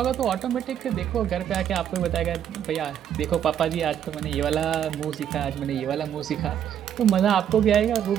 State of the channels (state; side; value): quieter; left; 9.7 dB